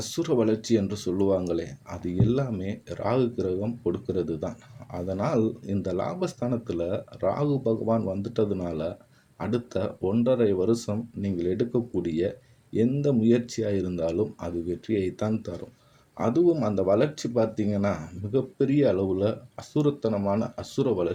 வளர்ச்சி என்று சொல்லுவாங்களே, அது எல்லாமே ராகு கிரகம் கொடுக்கிறது தான். அதனால் இந்த லாபஸ்தானத்தில் ராகு பகவான் வந்துட்டதுனால அடுத்த 1.5 வருஷம் நீங்கள் எடுக்கக்கூடிய எந்த முயற்சியாக இருந்தாலும் அது வெற்றியைத்தான் தரும். அதுவும் அந்த வளர்ச்சி பார்த்தீங்கன்னா மிகப்பெரிய அளவில் அசுரத்தனமான அசுர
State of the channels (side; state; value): both; identical; correlation 1.00